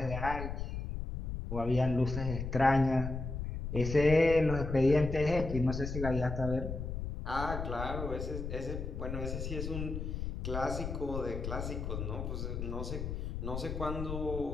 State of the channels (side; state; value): left; noise; rumble, 4 dB below the sound